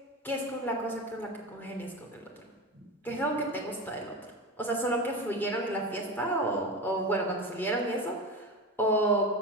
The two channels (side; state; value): both; normal; correlation 0.24